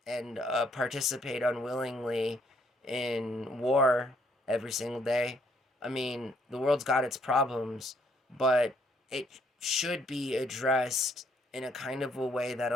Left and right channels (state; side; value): normal; both; correlation 0.68